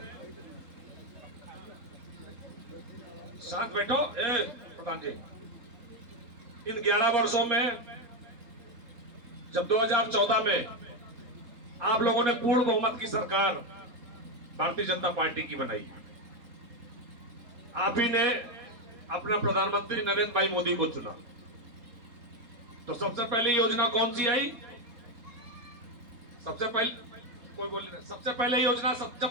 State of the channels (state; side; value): late; left; 3.7 ms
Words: साथ बैठो प्रधान जी, इन 11 वर्षों में जब 2014 में आप लोगों ने पूर्ण बहुमत की सरकार भारतीय जनता पार्टी की बनाई, आप ही ने अपना प्रधानमंत्री नरेंद्र भाई मोदी को चुना, तो सबसे पहले योजना कौन सी आई? सबसे पहले कोई बोल नहीं, सबसे पहले योजना